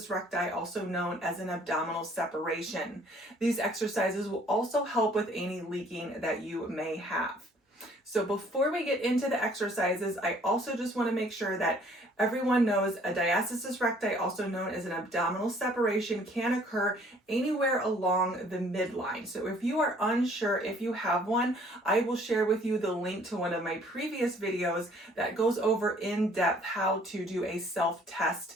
recti, also known as an abdominal separation. These exercises will also help with any leaking that you may have. So before we get into the exercises, I also just want to make sure that everyone knows a diastasis recti, also known as an abdominal separation, can occur anywhere along the midline. So if you are unsure if you have one, I will share with you the link to one of my previous videos that goes over in depth how to do a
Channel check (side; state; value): both; normal; correlation 0.58